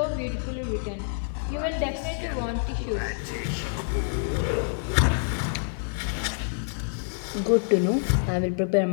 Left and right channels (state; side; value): silent; right; 60 dB below the other